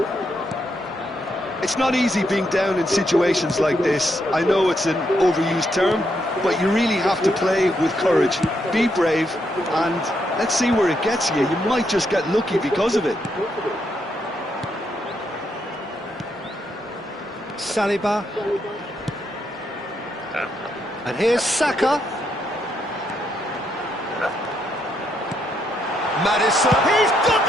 It's not easy being down in situations like this. I know it's an overused term, but you really have to play with courage. Be brave, and let's see where it gets you. You might just get lucky because of it. Saliba. And here's Saka. Madison. He's got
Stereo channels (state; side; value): normal; both; correlation 0.78